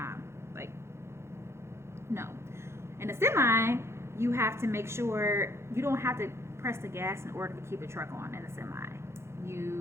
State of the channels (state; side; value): late; left; 0.13 ms